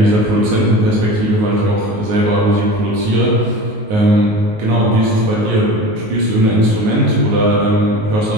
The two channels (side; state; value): left; late; 19 ms